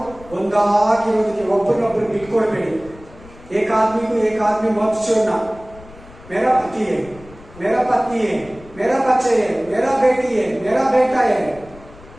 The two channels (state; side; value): noise; left; rumble, 21 dB below the sound